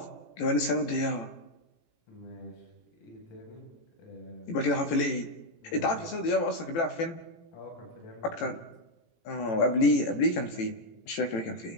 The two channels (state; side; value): late; right; 18 ms